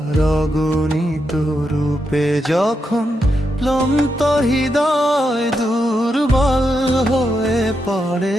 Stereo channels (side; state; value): both; normal; correlation 0.84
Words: অগণিত রূপে। যখন ক্লান্ত হৃদয় দুর্বল হয়ে পড়ে,